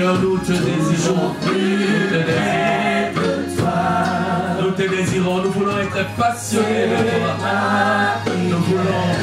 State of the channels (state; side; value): identical; both; correlation 1.00